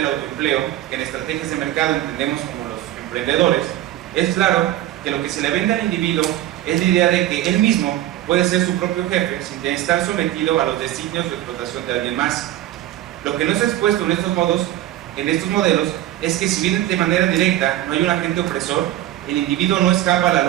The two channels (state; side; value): quieter; left; 13.8 dB